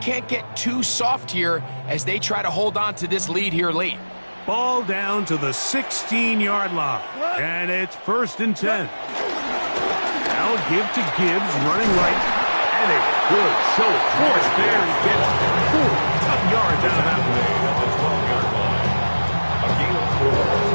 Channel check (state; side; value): inverted; both; correlation -1.00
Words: get too soft here as they try to hold on to this lead here late. Ball down to the 16-yard line, and it's 1st and 10. Now give to Gibbs, running right, and a good show of force there. He gets 4 tough yards out of that play. At the 12-yard line. A gain of 4.